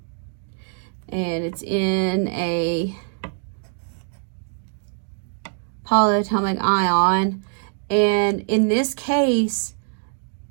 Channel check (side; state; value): left; silent; 63 dB below the other